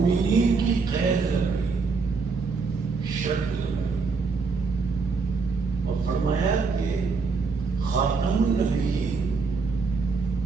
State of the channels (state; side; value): quieter; left; 4.6 dB